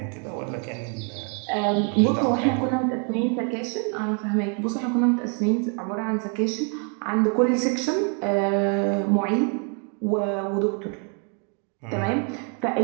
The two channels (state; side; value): quieter; left; 39.7 dB